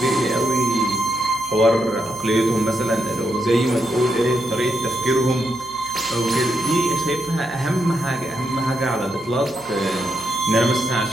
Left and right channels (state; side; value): noise; right; hum, 25 dB below the sound